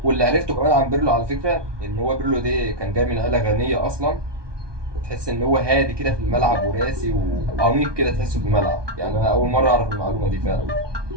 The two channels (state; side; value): late; left; 1.2 ms